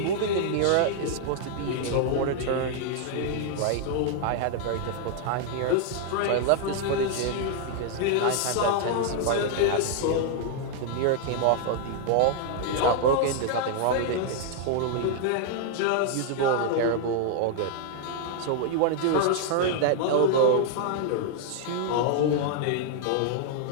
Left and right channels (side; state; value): both; different; correlation 0.00